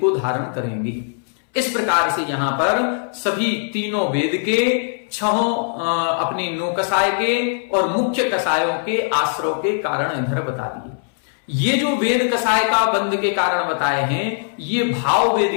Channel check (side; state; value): right; silent; 65 dB below the other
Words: धारण करेंगे। इस प्रकार से यहां पर सभी तीनों वेद के, छहों अपनी नौकसाय के और मुख्य कसायों के आश्रव के कारण इधर बता दिए। ये जो वेद कसाय का बंध के कारण बताए हैं, ये भाव